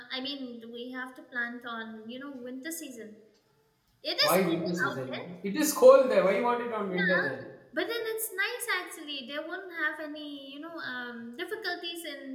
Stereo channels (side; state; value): both; identical; correlation 1.00